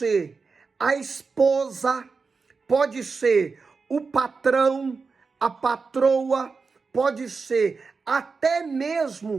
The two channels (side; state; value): left; quieter; 4.7 dB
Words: a esposa, pode ser o patrão, a patroa, pode ser até